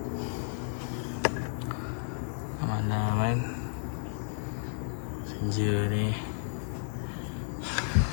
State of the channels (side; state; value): right; silent; digital silence